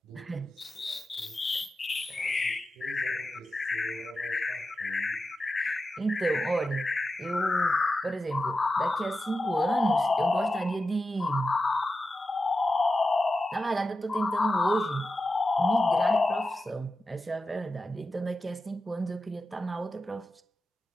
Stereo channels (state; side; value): normal; both; correlation 0.91